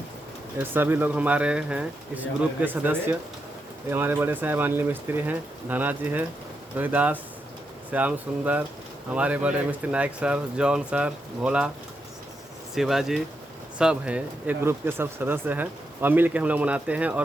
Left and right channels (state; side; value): normal; both; correlation 0.84